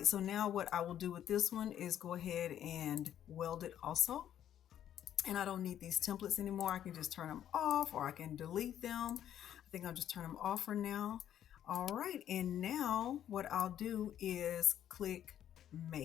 so now what I will do with this one is go ahead and weld it also. and I don't need these templates anymore. I can just turn them off, or I can delete them. I think I'll just turn them off for now. All right, and now what I'll do is click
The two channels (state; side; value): quieter; right; 10.6 dB